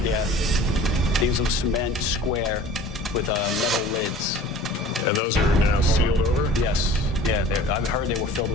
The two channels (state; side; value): normal; both; correlation 0.45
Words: Yeah. These are cement square with metal lids. And those are now sealed over? Yes. Yeah, I've heard they were filled